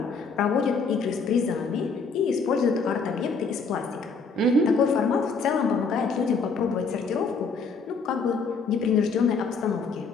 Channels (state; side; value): quieter; right; 4.6 dB